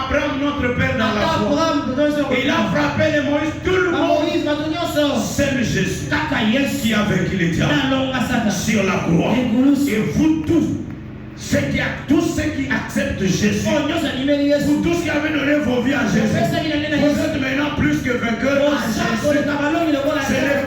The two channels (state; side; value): identical; both; correlation 1.00